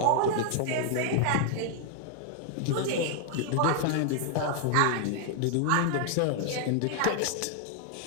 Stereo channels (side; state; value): both; different; correlation 0.00